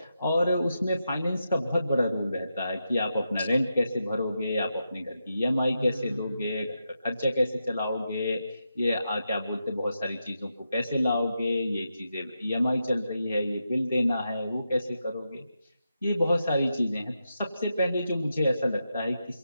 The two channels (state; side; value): inverted; both; correlation -0.86